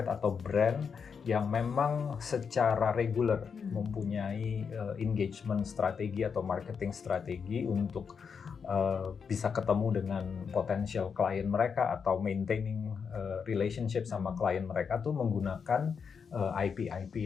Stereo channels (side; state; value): right; quieter; 6.2 dB